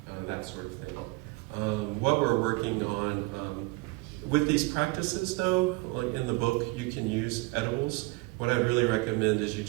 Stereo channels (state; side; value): quieter; left; 24.1 dB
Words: that sort of thing. What we're working on with these practices, though, like in the book, you can use edibles. What I really recommend is you